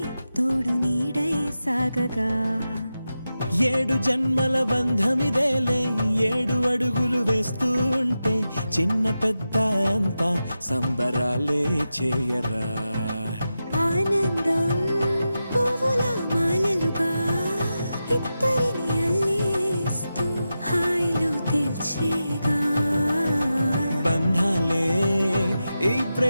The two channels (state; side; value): inverted; both; correlation -0.91